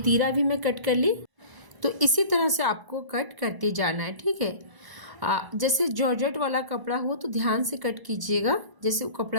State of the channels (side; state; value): left; late; 1.0 ms